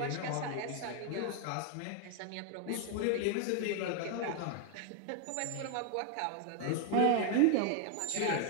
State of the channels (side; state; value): both; different; correlation 0.00